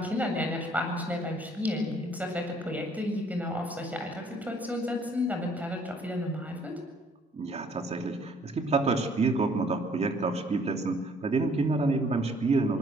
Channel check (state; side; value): normal; both; correlation 0.61